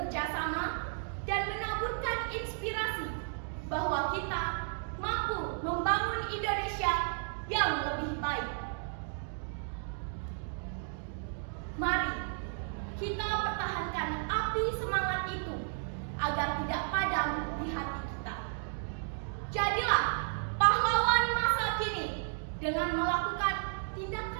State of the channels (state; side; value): silent; left; 55 dB below the other